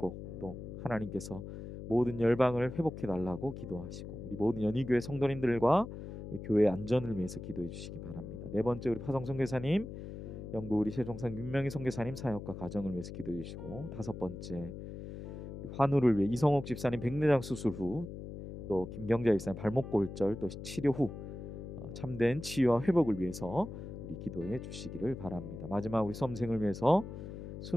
또 하나님께서 모든 열방을 회복해 달라고 기도하시고 우리 모든 연희교회 성도님들과 교회 안전을 위해서 기도해 주시기 바랍니다. 네 번째, 우리 파성 선교사님, 영국 우리 세종상 윤명희 선교사님 사역과 가정을 위해서 기도해 주시고, 다섯 번째, 환우를 위해 이성옥 집사님 백내장 수술 후 또 김경자 집사님 발목 골절 또 치료 후 참된 치유와 회복을 위해서 우리 기도해 주시기를 바랍니다. 마지막 우리 수험생을 위해서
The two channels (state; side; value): noise; left; hum, 9 dB below the sound